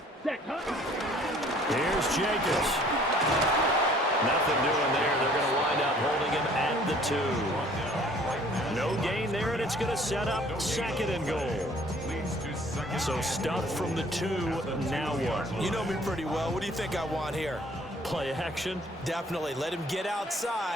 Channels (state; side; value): normal; both; correlation 0.56